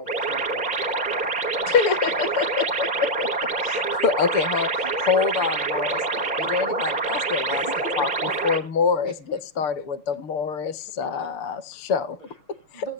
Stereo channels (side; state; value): right; late; 6.7 ms